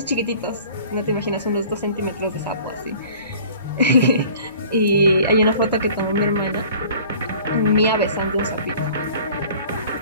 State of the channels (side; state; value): both; inverted; correlation -0.48